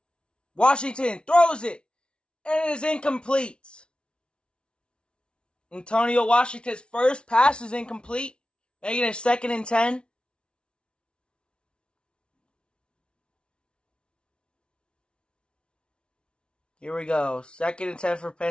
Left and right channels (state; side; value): late; right; 0.057 ms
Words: Washington throws it, and it is incomplete. Antonio Washington's first pass is incomplete, making it 2nd and 10. Here we go. 2nd and 10 for